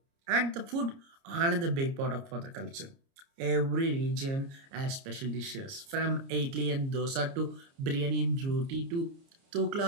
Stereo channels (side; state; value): left; late; 30 ms